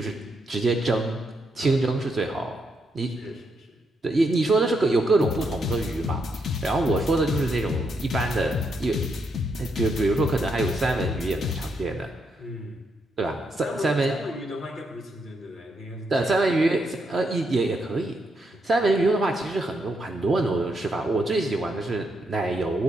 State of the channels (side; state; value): both; normal; correlation 0.79